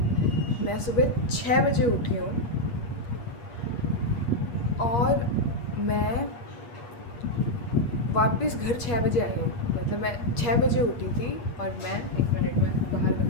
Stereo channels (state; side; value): late; right; 8.5 ms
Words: मैं सुबह 6 बजे उठी हूँ और मैं वापस घर 6 बजे आई हूँ। मतलब मैं 6 बजे उठी थी और मैं 1 मिनट में बाहर